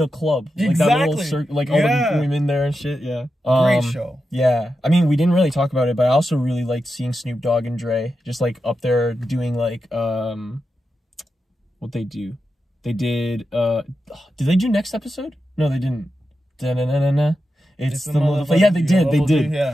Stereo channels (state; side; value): normal; both; correlation 0.89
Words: club. Like that little like all the women there and shit, yeah. Great show. Yeah. I mean, we didn't really talk about it, but I also really liked seeing Snoop Dogg and Dre just like up there doing like what they do. They did they do next episode? No, they didn't. Da-na-na-na-na. It's the motherfucker. Yeah, they did.